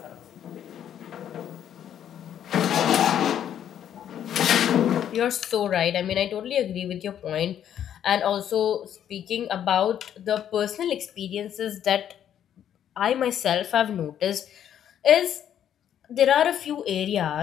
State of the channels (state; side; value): quieter; right; 10.0 dB